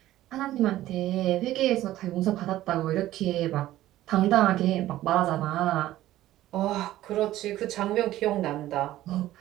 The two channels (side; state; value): left; quieter; 14.6 dB